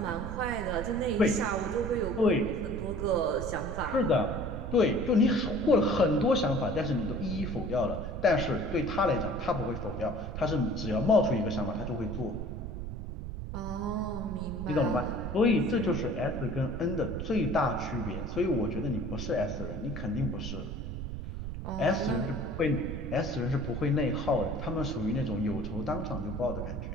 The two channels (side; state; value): right; noise; rumble, 6 dB below the sound